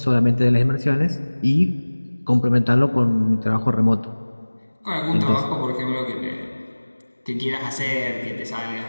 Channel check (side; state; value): both; inverted; correlation -1.00